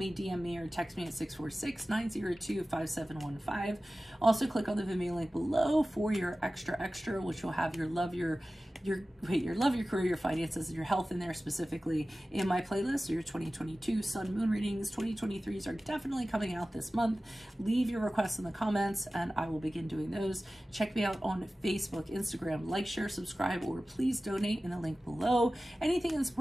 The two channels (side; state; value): both; normal; correlation 0.96